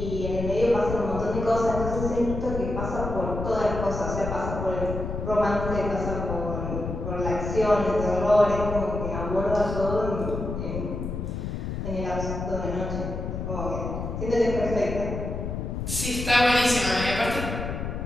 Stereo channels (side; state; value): left; noise; rumble, 4 dB below the sound